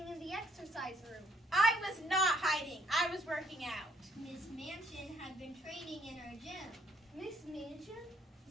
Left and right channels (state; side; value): normal; both; correlation 0.67